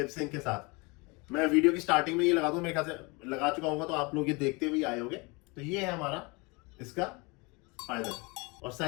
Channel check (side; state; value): right; quieter; 27.6 dB